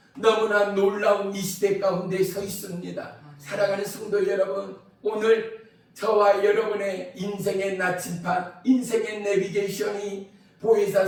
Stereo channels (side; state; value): both; identical; correlation 1.00